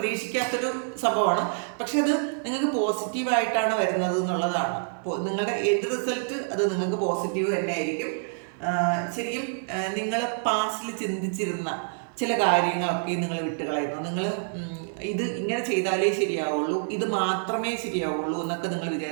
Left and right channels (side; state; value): left; silent; 57 dB below the other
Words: സംഭവമാണ്. പക്ഷെ അത് നിങ്ങൾക്ക് പോസിറ്റീവായിട്ടാണ് വരുന്നത് എന്നുള്ളതാണ്. നിങ്ങളുടെ എൻഡ് റിസൾട്ട് അത് നിങ്ങൾക്ക് പോസിറ്റീവ് തന്നെ ആയിരിക്കും. ശരിക്കും നിങ്ങൾ പാസ്റ്റിൽ ചിന്തിച്ചിരുന്ന ചില കാര്യങ്ങളൊക്കെ നിങ്ങൾ വിട്ടുകളയുന്നു. നിങ്ങൾ ഇത് ഇങ്ങനെ ചെയ്താലേ ശരിയാവുള്ളൂ, ഇത് മാത്രമേ ശരിയാവുള്ളൂ എന്നൊക്കെ നിങ്ങൾ